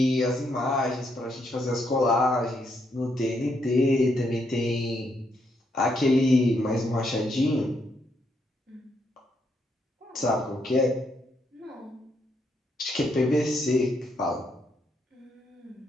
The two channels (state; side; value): normal; both; correlation 0.76